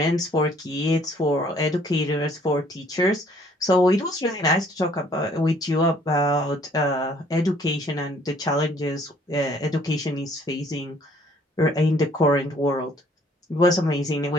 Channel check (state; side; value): normal; both; correlation 0.60